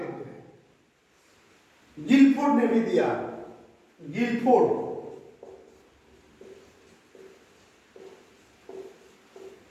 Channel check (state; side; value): identical; both; correlation 1.00